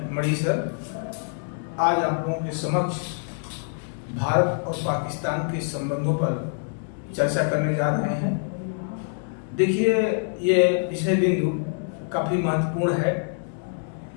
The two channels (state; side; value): silent; right; digital silence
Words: मणि सर आज आप लोगों के समक्ष भारत और पाकिस्तान के संबंधों पर चर्चा करने जा रहे हैं। देखिए, ये विषय बिंदु काफ़ी महत्वपूर्ण है